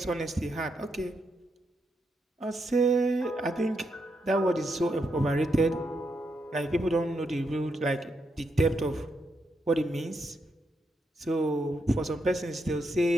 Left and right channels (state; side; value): normal; both; correlation 0.81